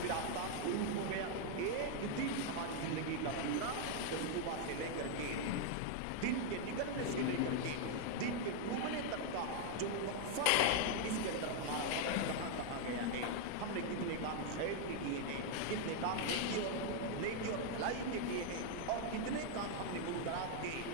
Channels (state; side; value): different; both; correlation 0.00